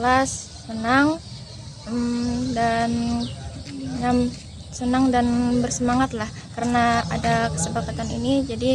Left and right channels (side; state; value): both; identical; correlation 1.00